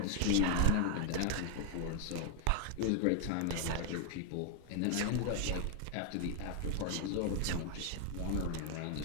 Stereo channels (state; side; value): different; both; correlation 0.00